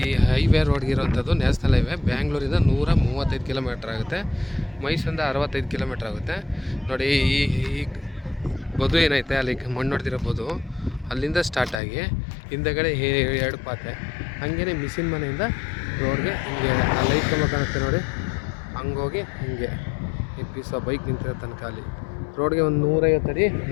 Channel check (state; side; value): drops out; right; at 11.8 s